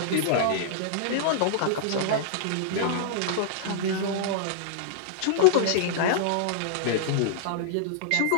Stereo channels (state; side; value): different; both; correlation -0.02